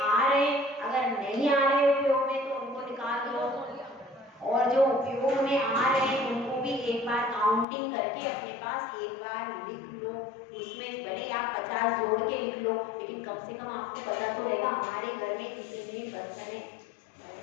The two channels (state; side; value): drops out; right; at 7.7 s